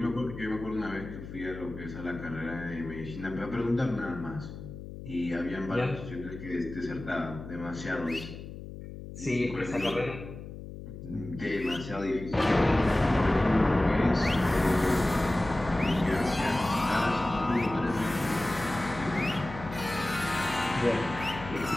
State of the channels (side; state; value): left; noise; hum, 12 dB below the sound